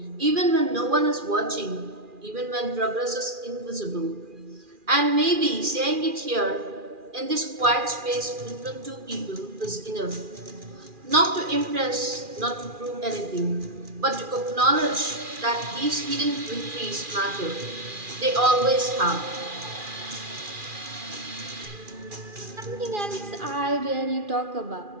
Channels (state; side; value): late; left; 2.4 ms